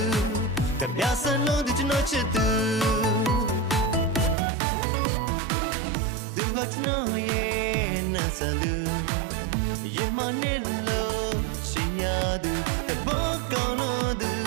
ကပြဆန်လို့သူကျွန်တော်ချစ်သူသူကကျွန်တော်ရဲ့နန်းဆန်သူရင်မနဲ့လို့ချင်ရသူတဘောကောင်းလို့သူ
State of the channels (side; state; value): left; drops out; at 4.4 s